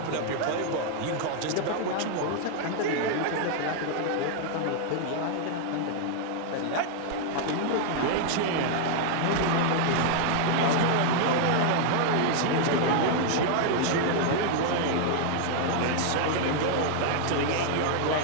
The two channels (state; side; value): different; both; correlation 0.00